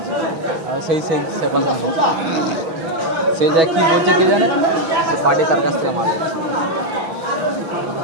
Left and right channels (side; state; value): left; late; 6.2 ms